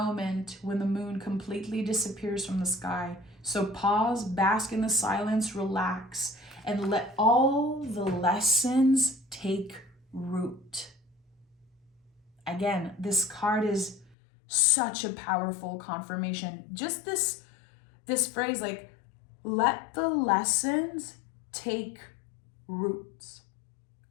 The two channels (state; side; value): drops out; right; at 14.2 s